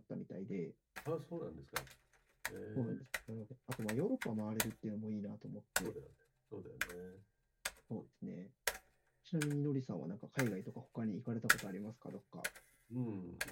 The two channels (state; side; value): identical; both; correlation 1.00